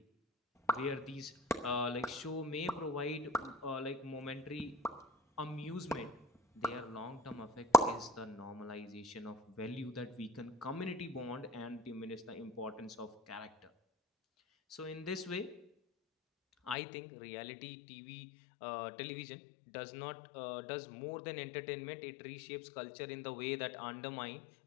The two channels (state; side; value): drops out; right; at 16.8 s